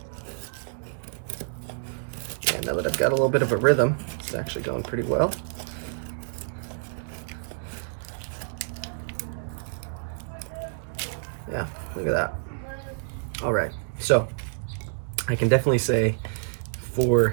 Yeah, now that I've got a little bit of a rhythm, it's actually going pretty well. Yeah, look at that. All right, so I can definitely say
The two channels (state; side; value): silent; left; digital silence